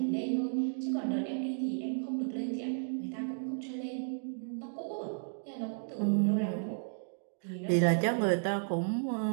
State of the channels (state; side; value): silent; left; digital silence